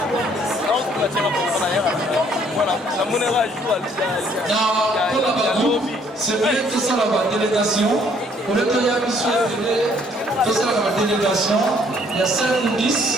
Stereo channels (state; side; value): normal; both; correlation 0.63